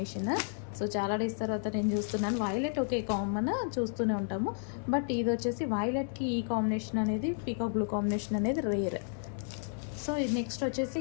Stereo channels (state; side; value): silent; right; 56 dB below the other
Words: సో చాలా డేస్ తర్వాత నేను చూస్తున్నాను. వైలెట్ ఓకే కామన్ చూస్తూనే ఉంటాము, బట్ ఇది వచ్చేసి వైలెట్కి ఈ కాంబినేషన్ అనేది, పీకాక్ బ్లూ కాంబినేషన్ అనేది రేర్. సో నెక్స్ట్ వచ్చేసి